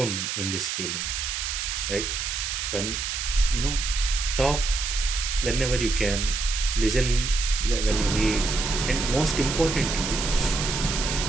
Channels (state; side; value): noise; right; hiss, 3 dB below the sound